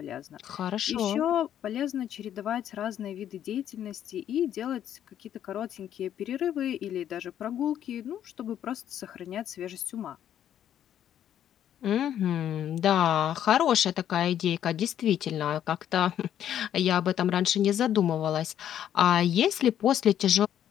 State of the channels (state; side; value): quieter; right; 10.5 dB